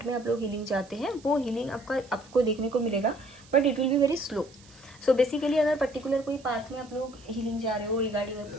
में आप लोग हीलिंग चाहते हैं, वो हीलिंग आपको देखने को मिलेगा, but it will be very slow. So basically अगर पर्टिकुलर कोई पाथ में आप लोग हीलिंग जा रहे हो, रिगार्डिंग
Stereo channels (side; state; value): right; noise; hiss, 25 dB below the sound